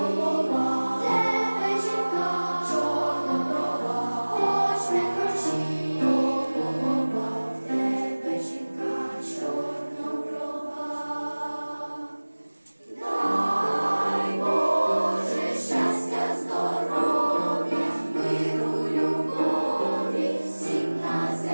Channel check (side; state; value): both; inverted; correlation -1.00